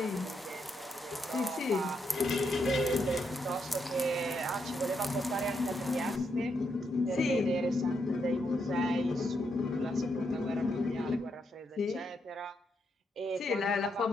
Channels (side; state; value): both; normal; correlation 0.80